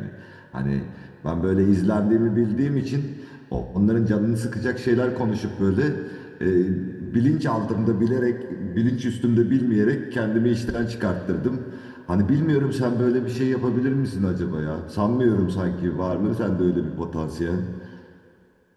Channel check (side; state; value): both; identical; correlation 1.00